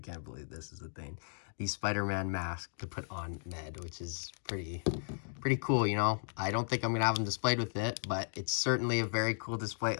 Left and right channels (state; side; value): silent; right; digital silence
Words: believe this is a thing, the Spider-Man mask to put on Ned, which is pretty cool, you know. I don't think I'm gonna have him displayed with it, but it's certainly a very cool display.